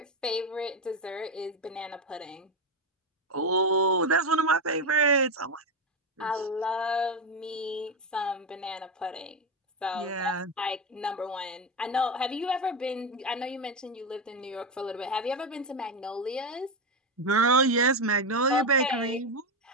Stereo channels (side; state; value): both; normal; correlation 0.11